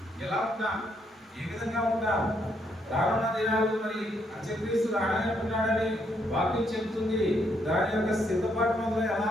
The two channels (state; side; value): normal; both; correlation 0.74